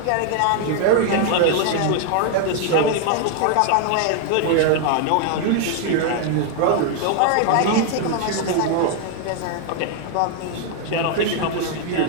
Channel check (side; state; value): both; different; correlation 0.00